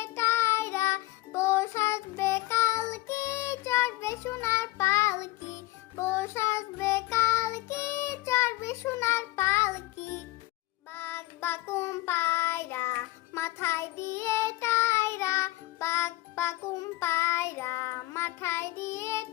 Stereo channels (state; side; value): quieter; right; 18.9 dB